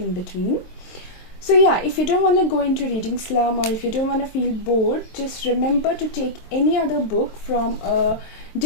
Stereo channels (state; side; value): late; right; 22 ms